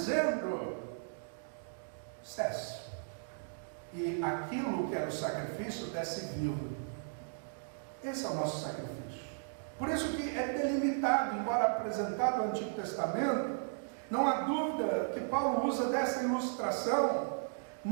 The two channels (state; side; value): silent; left; digital silence